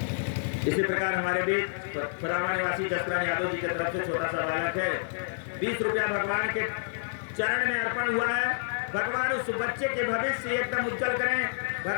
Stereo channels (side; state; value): right; silent; 59 dB below the other